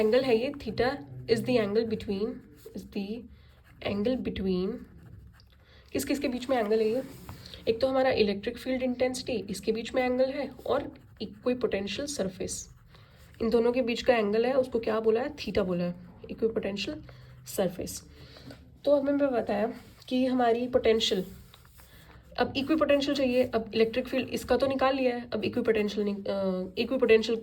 है ये, theta is the angle between किस किस के बीच में एंगल है ये, एक तो हमारा इलेक्ट्रिक फील्ड इंटेंसिटी, इसके बीच में एंगल है, और इक्विपोटेंशियल सरफेस, इन दोनों के बीच का एंगल है, उसको क्या बोला है, थीटा बोला है, इक्विपोटेंशियल सरफेस। तो हमें बताया कि हमारी पोटेंशियल, अब इक्विपोटेंशियल चाहिए, अब इलेक्ट्रिक फील्ड इसका तो निकाल लिया है, अब इक्विपोटेंशियल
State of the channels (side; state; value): both; identical; correlation 1.00